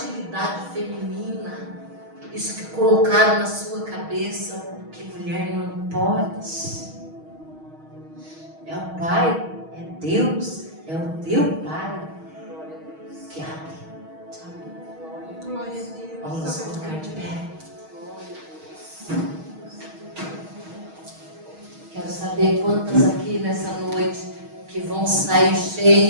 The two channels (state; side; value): late; left; 6.3 ms